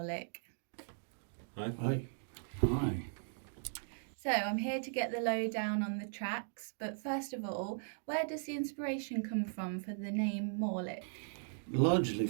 Hi. Hi. Hi. So I'm here to get the lowdown on the tracks, but first of all, where does the inspiration come from for the name Morlich? Largely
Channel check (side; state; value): left; silent; digital silence